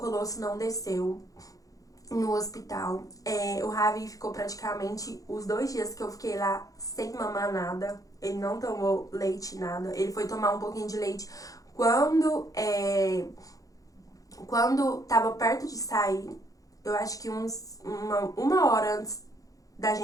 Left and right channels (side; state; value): right; late; 0.17 ms